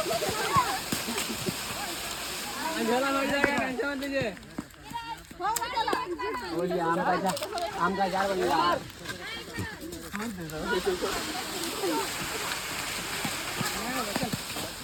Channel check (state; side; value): identical; both; correlation 1.00